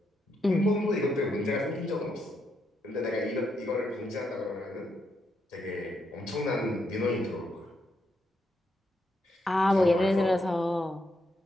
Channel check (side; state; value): both; normal; correlation 0.80